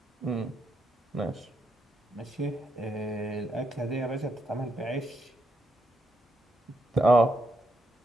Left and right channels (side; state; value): both; normal; correlation 0.78